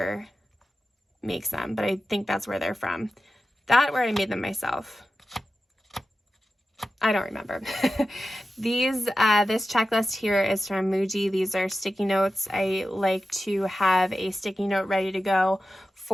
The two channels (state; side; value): normal; both; correlation 0.93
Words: makes them, but I think that's where they're from. That, where I made them myself. I don't remember. This checklist here is from Muji. These are sticky notes. I like to have a sticky note ready to go